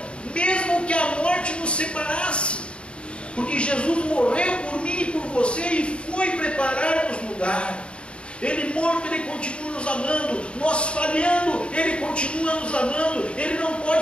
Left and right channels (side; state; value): right; late; 0.057 ms